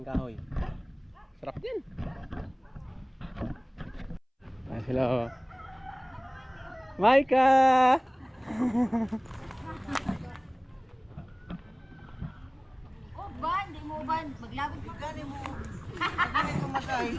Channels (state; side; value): identical; both; correlation 1.00